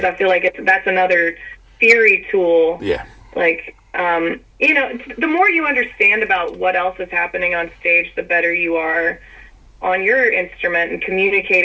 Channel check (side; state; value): both; identical; correlation 1.00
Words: I feel like that's another theory tool. Yeah. Like the more you understand about what else is happening on stage, the better you are on your instrument and